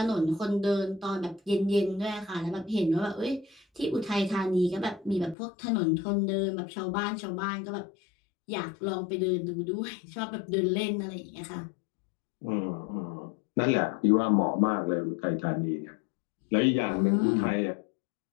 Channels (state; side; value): drops out; right; at 5.4 s